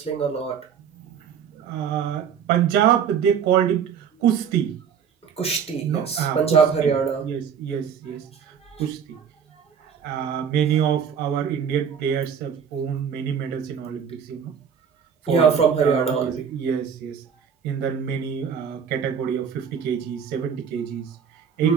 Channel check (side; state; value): left; quieter; 7.5 dB